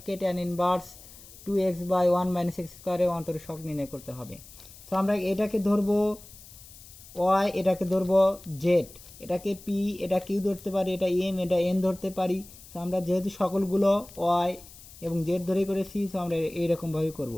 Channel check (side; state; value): left; noise; hiss, 19 dB below the sound